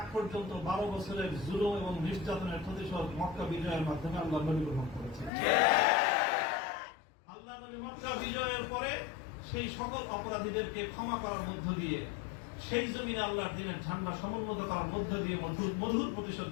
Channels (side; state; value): right; drops out; at 5.3 s